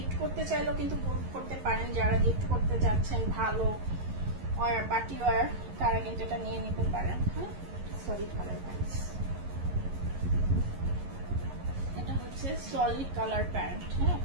করতে চাইলেও কিন্তু করতে পারেন, যারা গিফট করতে যাচ্ছেন ভালো ওয়্যার, পার্টি ওয়্যার, তারা কিন্তু এটা নিয়ে নিতে পারেন। হ্যাঁ, সলিড কালার প্যান্টস। এটা হচ্ছে সলিড কালার প্যান্ট। হ্যাঁ,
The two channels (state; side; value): late; left; 11 ms